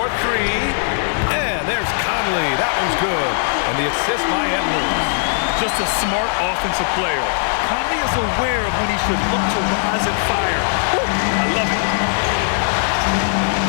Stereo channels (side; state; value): right; silent; digital silence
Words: And there's Conley. That one's good. And the assist by Edwards. Just a smart offensive player. Conley is aware of when he should look to rise and fire. Woo, I love it.